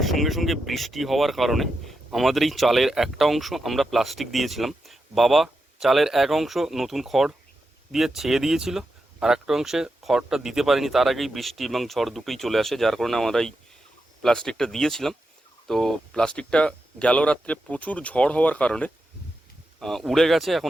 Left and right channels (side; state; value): both; normal; correlation 0.87